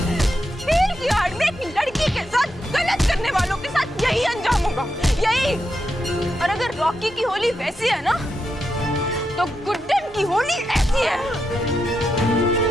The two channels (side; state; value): both; normal; correlation 0.85